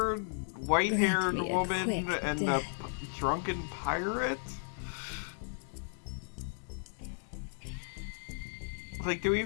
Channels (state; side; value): silent; right; digital silence